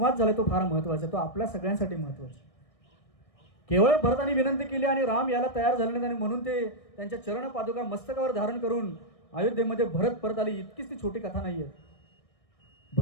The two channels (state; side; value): late; right; 1.6 ms